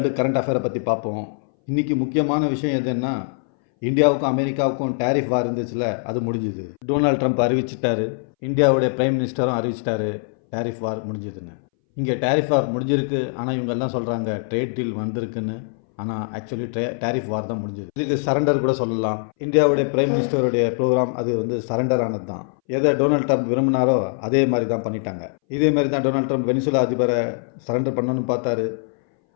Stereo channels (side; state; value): right; silent; 62 dB below the other